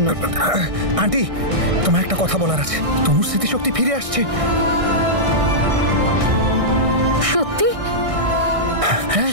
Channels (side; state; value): left; late; 1.6 ms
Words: আন্টি, তোমার একটা কথা বলার আছে। তনুর স্মৃতিশক্তি ফিরে আসছে। সত্যি? হ্যাঁ